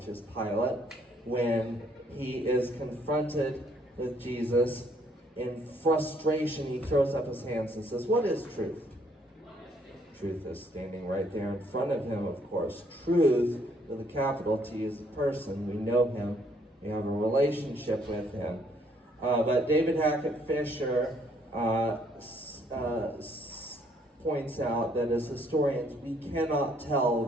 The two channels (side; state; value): both; normal; correlation 0.67